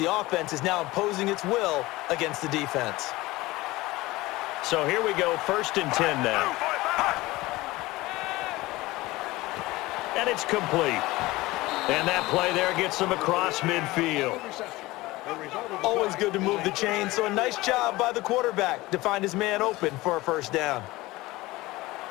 offense is now imposing its will against the defense. So here we go, 1st and 10 now. And it's complete. And that play there gets them across midfield. Always good to move the chain, so a nice job by the quarterback to find his man open for a first down.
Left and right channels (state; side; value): quieter; right; 19.7 dB